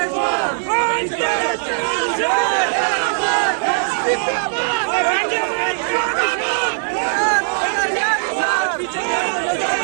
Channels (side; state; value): left; silent; digital silence